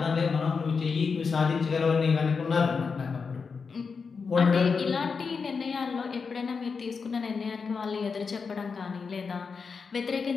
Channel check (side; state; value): right; quieter; 5.2 dB